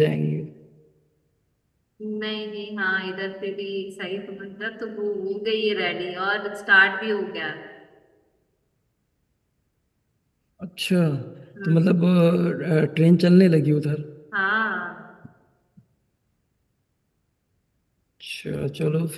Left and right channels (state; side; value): identical; both; correlation 1.00